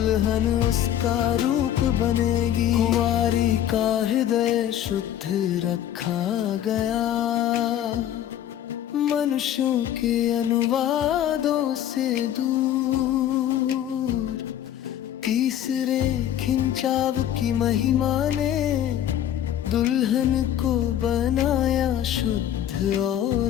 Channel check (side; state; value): right; quieter; 11.2 dB